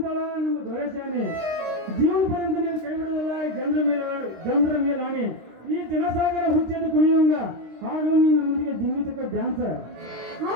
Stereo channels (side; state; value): left; late; 26 ms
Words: ನಮ್ಮ ದೊರೆಸ್ಯಾನಿ ಜೀವನ ಪರಿಂದ ನೀನು ಕೈ ಬಿಡೋದಲ್ಲ ಜನರ ಮೇಲೆ ರಾಣಿ ಈ ಜನಸಾಗರ ಹುಚ್ಚೆದ್ದು ಕುಣಿಯೋಂಗ ಹಾಡು ನೀನು ನನ್ನೊಂದಿಗೆ ಜಿಂಗಿತಕ್ಕ ಡ್ಯಾನ್ಸ್